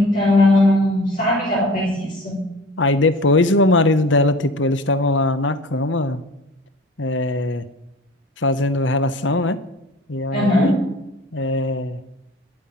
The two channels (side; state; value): both; normal; correlation 0.41